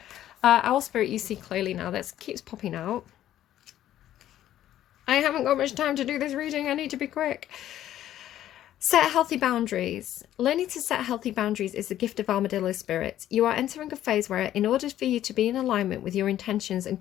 Owl Spirit, you see clearly now. That keeps popping out. I haven't got much time to do this reading. I need to be quick. Set healthy boundaries. Learning to set healthy boundaries is the gift of armadillo spirit. You are entering a phase where, in order for you to be in alignment with your intentions and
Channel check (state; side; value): quieter; right; 12.3 dB